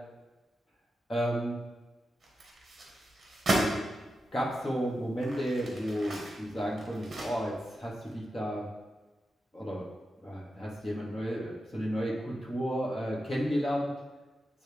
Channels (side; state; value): both; normal; correlation 0.89